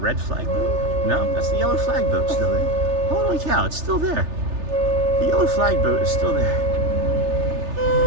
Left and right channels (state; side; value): late; left; 3.3 ms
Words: flag boat. No, that's the yellow flag boat still there. Holy cow, it's still there. The yellow flag boat is still there.